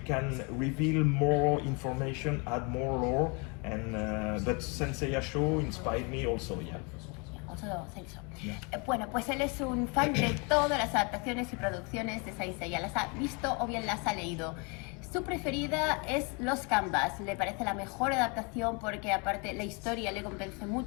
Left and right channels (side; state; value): right; quieter; 32.1 dB